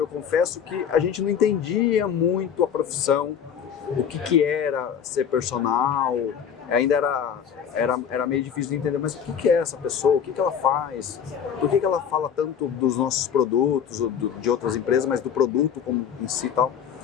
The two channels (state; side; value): quieter; right; 8.0 dB